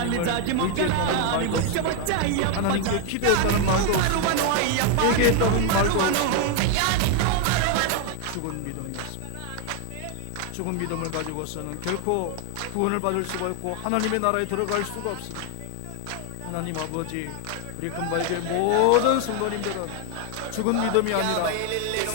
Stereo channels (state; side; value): different; both; correlation 0.00